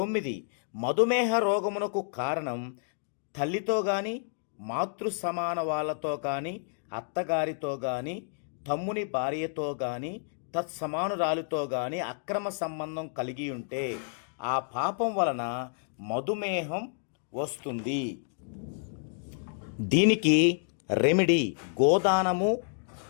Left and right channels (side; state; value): right; silent; digital silence